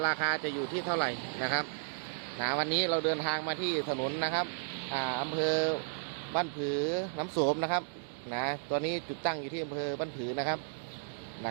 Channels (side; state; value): left; silent; digital silence